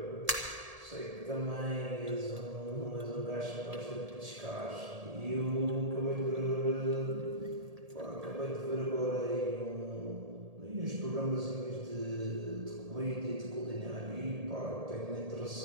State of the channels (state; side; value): late; left; 1.7 ms